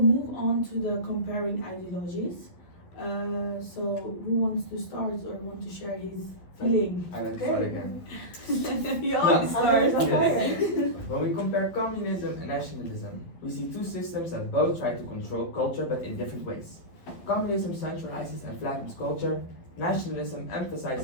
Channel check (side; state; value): right; late; 12 ms